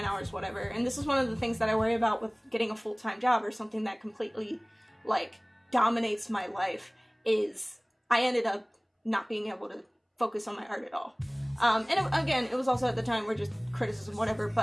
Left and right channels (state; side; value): identical; both; correlation 1.00